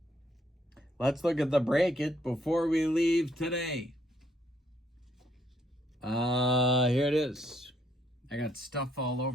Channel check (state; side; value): normal; both; correlation 0.71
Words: Let's look at the break it before we leave today. Here it is. I got stuff all